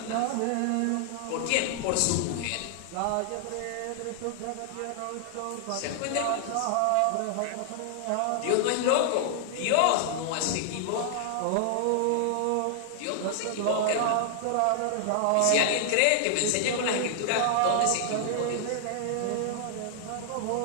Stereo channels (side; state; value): both; different; correlation -0.01